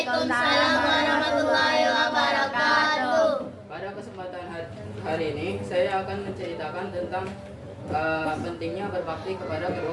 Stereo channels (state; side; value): identical; both; correlation 1.00